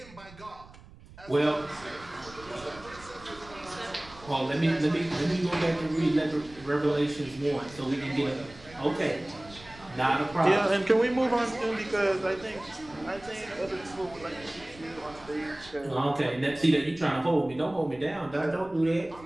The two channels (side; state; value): right; noise; rumble, 21 dB below the sound